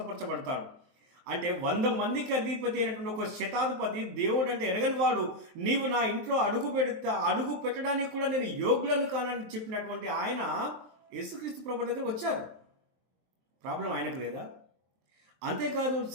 అంటే 100 మందికి అధిపతి అయినటువంటి ఒక శతాధిపతి దేవుడు అంటే ఎరగని వాడు, నీవు నా ఇంట్లో అడుగు పెట్టడానికి కూడా నేను యోగ్యుడను కానని చెప్పినటువంటి ఆయన యేసుక్రీస్తు ప్రభు దగ్గర వచ్చారు. ప్రాబ్లం ఆయనకు లేదా? అంతేకాదు,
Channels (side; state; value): left; late; 23 ms